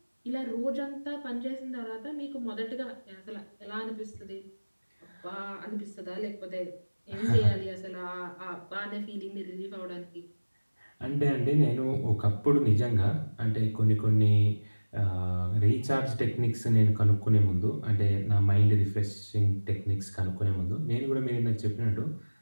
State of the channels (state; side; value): inverted; both; correlation -1.00